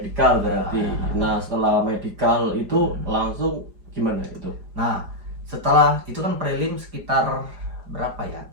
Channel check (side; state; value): left; late; 4.9 ms